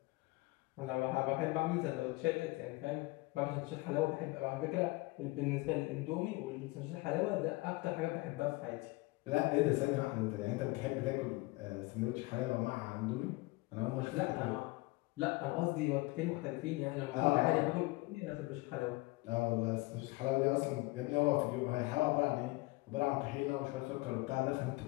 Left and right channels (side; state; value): right; quieter; 22.9 dB